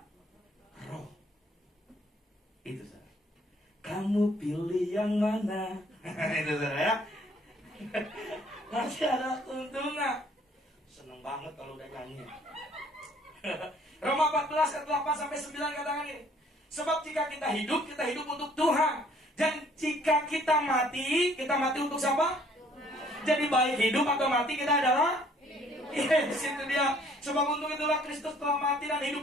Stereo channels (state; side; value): normal; both; correlation 0.60